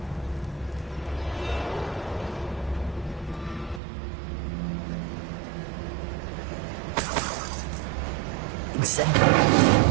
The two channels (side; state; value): left; drops out; at 3.8 s